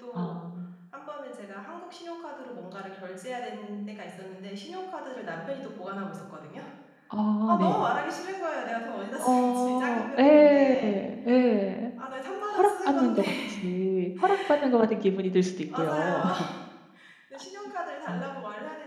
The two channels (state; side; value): identical; both; correlation 1.00